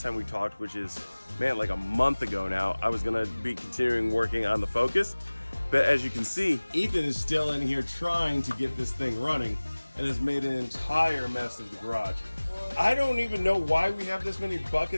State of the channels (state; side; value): inverted; both; correlation -1.00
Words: time we talked, which is, man, like a month ago now, I was gonna be continuing working on the Focus. But as you can see, Ethan is still in here trying to get this thing running and has made an entire mess of the garage. I don't even know why we have this many